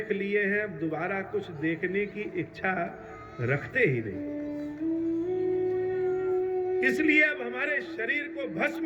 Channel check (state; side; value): identical; both; correlation 1.00